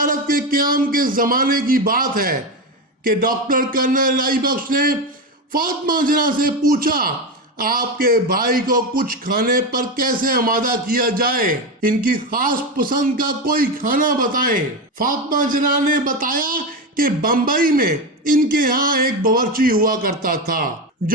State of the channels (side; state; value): both; normal; correlation 0.16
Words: کے قیام کے زمانے کی بات ہے کہ ڈاکٹر کرنل الہی بخش نے فاطمہ جناح سے پوچھا، آپ کے بھائی کو کچھ کھانے پر کیسے آمادہ کیا جائے، ان کی خاص پسند کا کوئی کھانا بتائیں۔ فاطمہ جناح نے بتایا کہ بمبئی میں ان کے ہاں ایک باورچی ہوا کرتا تھا